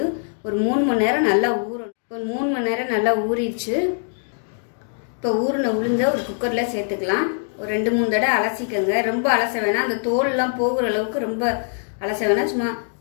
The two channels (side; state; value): right; silent; 61 dB below the other